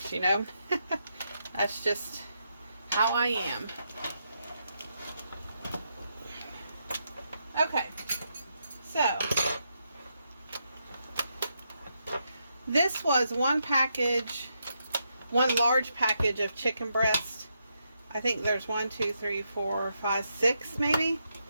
you know? That's just how I am. Okay, so this was one large package of chicken breast. I think there's 1, 2, 3, 4, 5, 6 maybe.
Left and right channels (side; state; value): both; inverted; correlation -0.81